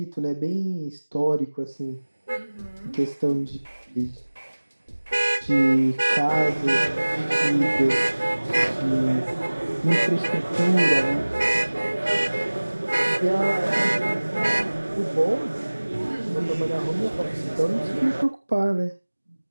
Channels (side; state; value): both; inverted; correlation -1.00